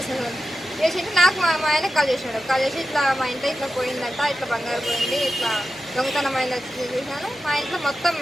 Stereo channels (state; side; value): noise; right; hum, 28 dB below the sound